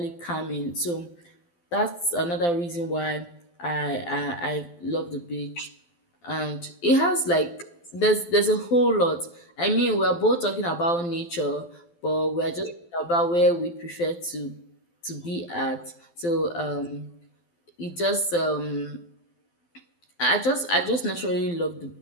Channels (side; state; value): right; late; 12 ms